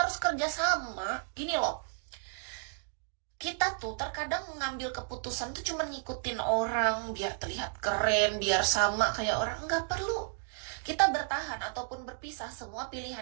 kerjasama. Gini loh, kita tuh terkadang mengambil keputusan tuh cuma ngikutin orang biar terlihat keren, biar sama kayak orang. Nggak perlu. Kita bertahan ataupun berpisah, semua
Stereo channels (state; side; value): silent; left; 56 dB below the other